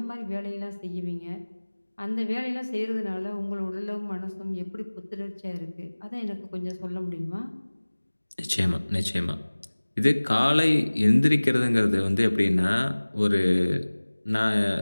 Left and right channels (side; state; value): both; inverted; correlation -1.00